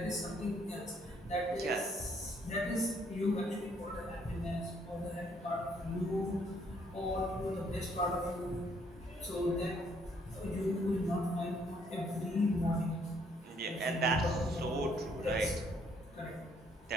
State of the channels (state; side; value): normal; both; correlation 0.67